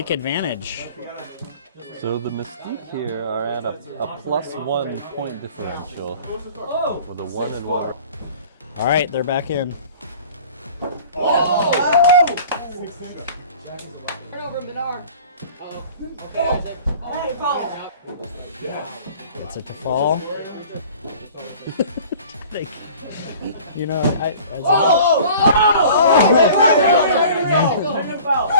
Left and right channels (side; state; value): both; inverted; correlation -0.46